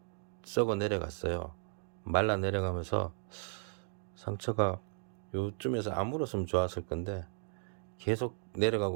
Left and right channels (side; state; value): left; silent; digital silence